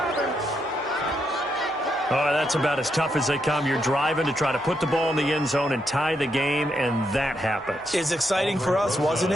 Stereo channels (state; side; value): noise; right; hum, 29 dB below the sound